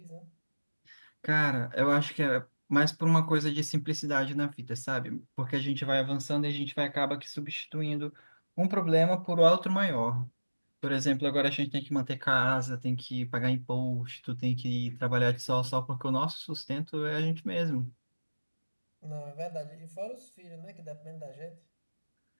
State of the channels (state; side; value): inverted; both; correlation -1.00